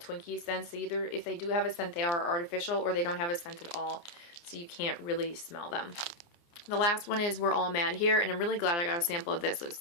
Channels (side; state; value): right; late; 29 ms